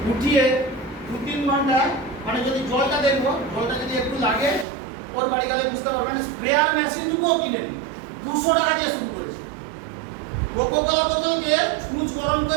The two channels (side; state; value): left; drops out; at 4.7 s